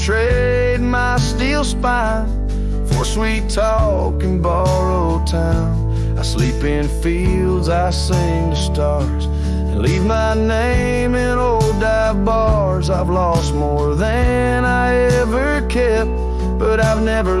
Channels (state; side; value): identical; both; correlation 1.00